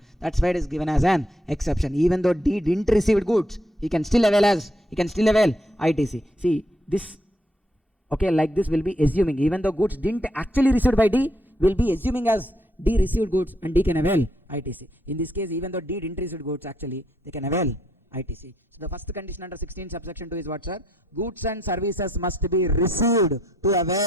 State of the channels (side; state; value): both; normal; correlation 0.73